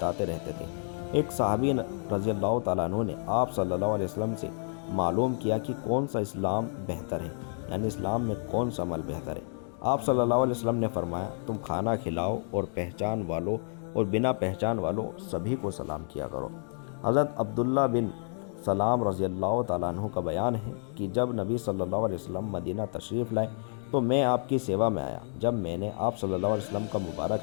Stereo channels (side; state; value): right; silent; 58 dB below the other